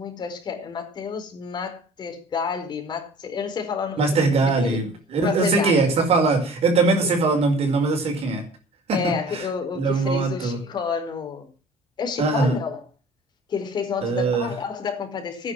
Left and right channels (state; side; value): normal; both; correlation 0.47